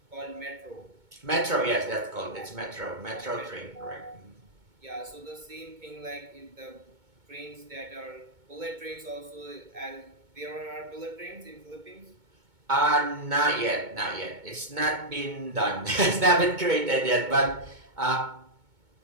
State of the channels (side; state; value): left; late; 2.2 ms